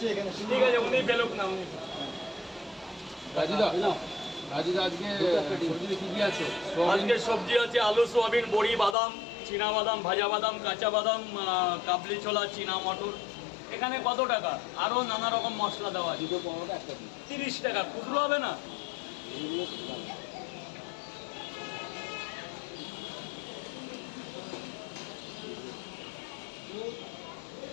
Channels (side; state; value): right; drops out; at 9.0 s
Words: এখানে। ঠিক আছে, উনি ফেলুক না উনি। রাজুদা রাজুদা আজকে সবজি কি কি আছে? আজকে সবজি আছে আলু, সোয়াবিন, বড়ি, বাদাম, চীনা বাদাম, ভাজা বাদাম, কাঁচা বাদাম, কাবলি ছোলা, চীনা মটর। এখানে কত টাকা? আরও নানা রকম মশলা দেওয়া আছে। 30 টাকা, খুচরো হবে না?